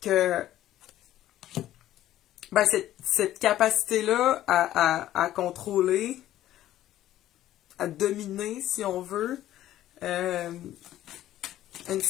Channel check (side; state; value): right; quieter; 13.3 dB